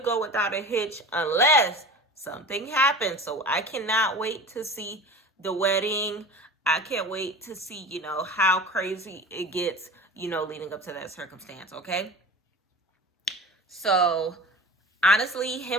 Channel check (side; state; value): both; normal; correlation 0.36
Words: go without a hitch unless something happens. So I cannot wait to see the wedding. I can't wait to see, how crazy it gets, leading up to that circumstance, okay? So honestly,